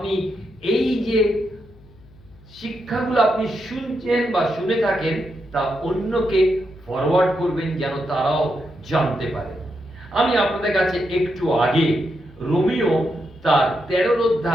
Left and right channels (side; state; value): left; noise; hum, 25 dB below the sound